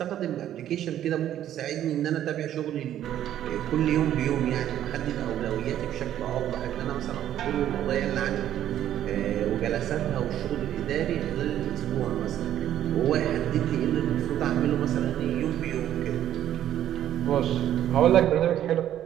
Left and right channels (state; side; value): quieter; left; 11.5 dB